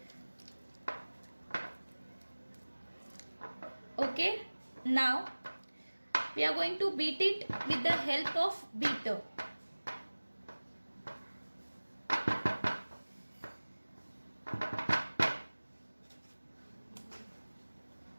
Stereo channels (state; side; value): inverted; both; correlation -1.00